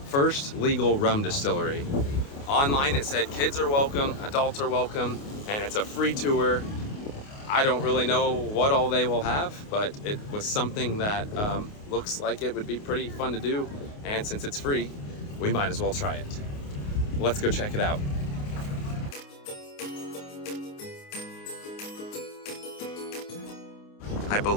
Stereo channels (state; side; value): late; right; 29 ms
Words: first legal rum distillery. Online it said kids are welcome, adults are welcome, and it's a free tour. I don't really know what all they will have, but it was something that looks like it would be pretty fun to do. And since it's free, we might as well try it. Let's go check it out. I